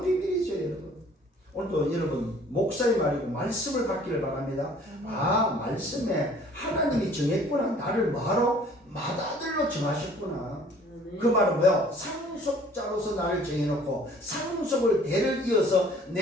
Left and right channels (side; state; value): both; normal; correlation 0.54